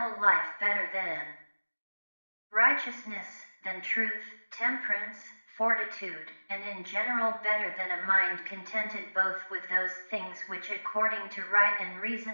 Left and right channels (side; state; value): both; inverted; correlation -1.00